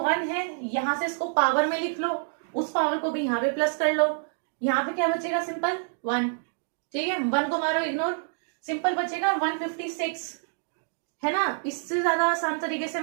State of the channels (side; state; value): left; silent; digital silence